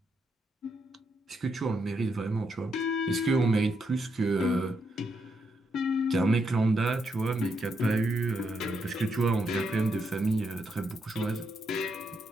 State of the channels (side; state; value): both; normal; correlation 0.80